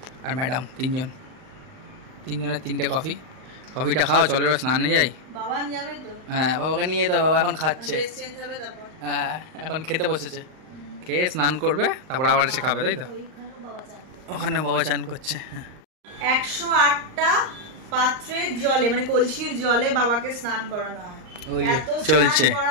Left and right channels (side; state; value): left; late; 38 ms